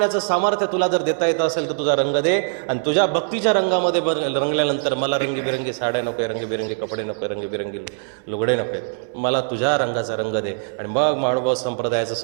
सामर्थ्य तुला जर देता येतं असेल तर तुझा रंग दे, आणि तुझ्या भक्तीच्या रंगामध्ये रंगल्यानंतर मला रंगीबिरंगी साड्या नको, रंगीबिरंगी कपडे नको, रंगीबिरंगी लुगडे नको, मला तुझ्या रंगाचा रंग दे. आणि मग महानुभाव संप्रदायाचं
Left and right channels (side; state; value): left; silent; 64 dB below the other